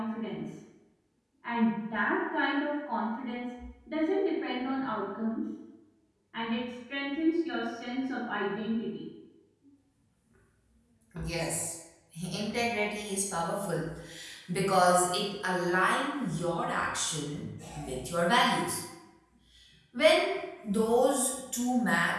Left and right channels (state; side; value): identical; both; correlation 1.00